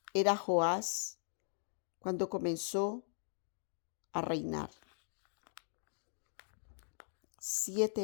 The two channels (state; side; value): silent; right; digital silence